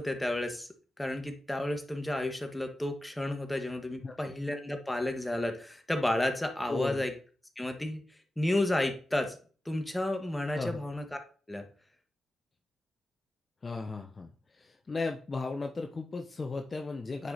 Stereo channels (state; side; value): normal; both; correlation 0.94